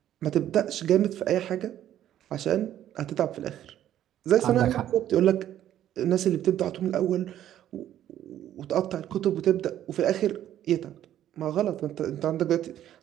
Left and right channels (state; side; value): quieter; left; 11.6 dB